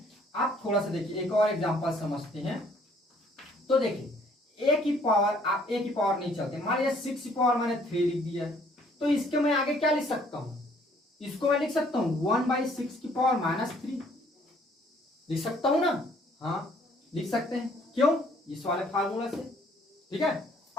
आप थोड़ा सा देखिए, एक और एग्जांपल समझते हैं। तो देखिए a की पावर, आप a की पावर नहीं चलते, मान लीजिए 6 की पावर मैंने 3 लिख दिया है, तो इसके मैं आगे क्या लिख सकता हूं, इसको मैं लिख सकता हूं 1/6 की पावर -3 लिख सकता हूं ना। हाँ लिख सकते हैं, क्यों, इस वाले फार्मूला से। ठीक है,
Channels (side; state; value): both; normal; correlation 0.62